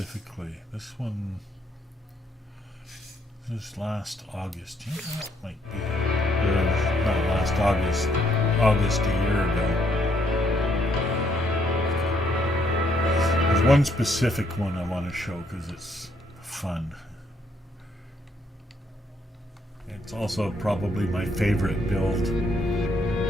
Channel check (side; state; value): both; normal; correlation 0.71